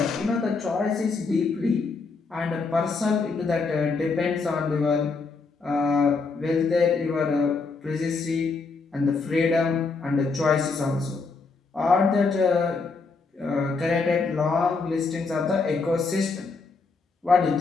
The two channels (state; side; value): quieter; right; 4.3 dB